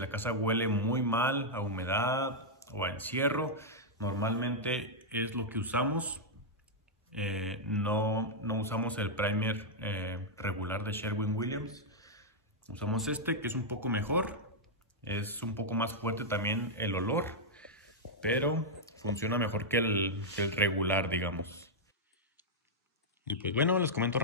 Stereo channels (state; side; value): normal; both; correlation -0.05